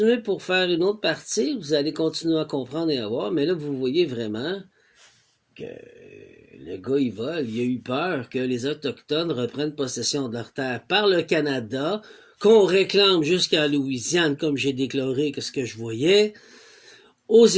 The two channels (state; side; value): identical; both; correlation 1.00